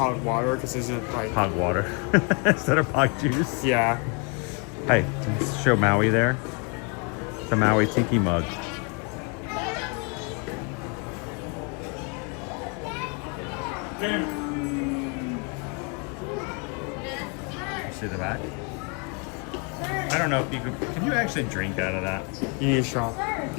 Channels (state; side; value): quieter; right; 35.3 dB